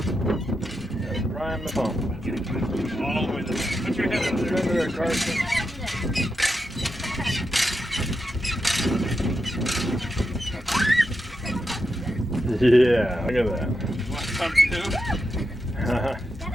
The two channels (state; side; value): normal; both; correlation 0.87